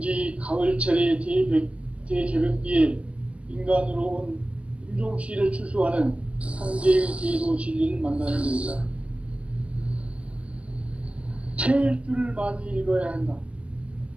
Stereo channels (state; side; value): late; left; 0.061 ms